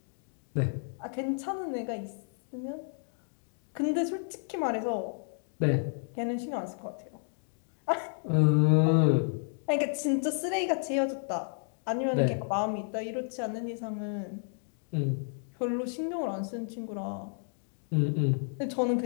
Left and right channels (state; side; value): silent; right; digital silence